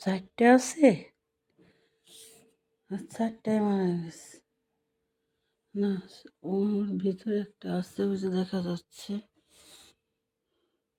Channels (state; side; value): identical; both; correlation 1.00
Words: 4টে আছে। 4টায় মারা গেছে না? ওর ভিতরে একটা আছে, ওই যে দেখা যাচ্ছে।